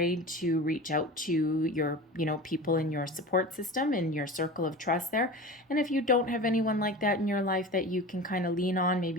to reach out to your people in your support system, in your circle of trust there. And if you don't have anyone like that in your life that you can kind of lean on,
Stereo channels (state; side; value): normal; both; correlation 0.33